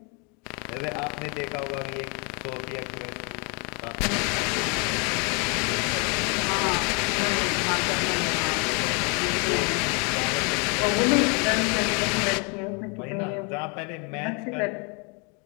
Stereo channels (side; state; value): right; quieter; 34.1 dB